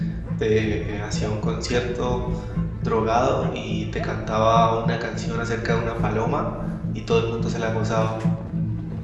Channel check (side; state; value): both; identical; correlation 1.00